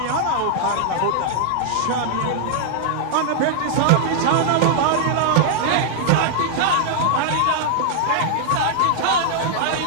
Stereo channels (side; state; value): both; different; correlation 0.00